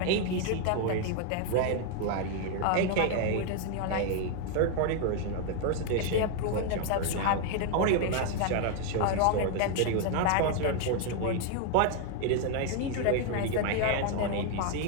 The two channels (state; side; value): different; both; correlation 0.01